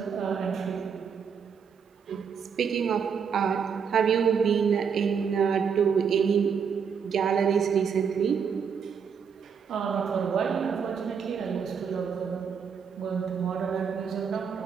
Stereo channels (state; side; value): quieter; left; 6.7 dB